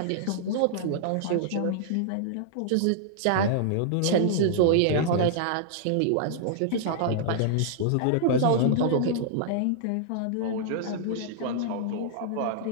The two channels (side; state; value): both; different; correlation -0.01